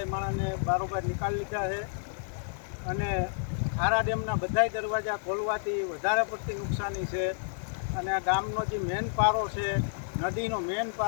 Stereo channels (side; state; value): right; silent; digital silence